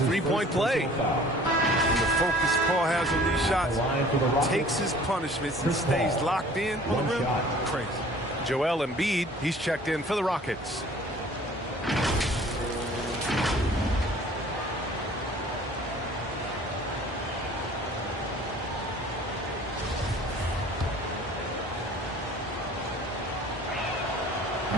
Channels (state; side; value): normal; both; correlation 0.50